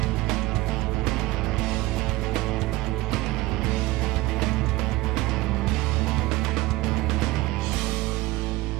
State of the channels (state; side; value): quieter; left; 19.4 dB